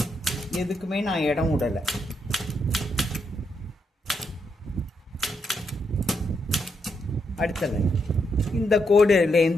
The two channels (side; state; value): both; normal; correlation 0.80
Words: எதுக்குமே நான் இடம் விடலை. அடுத்த லைன் இந்த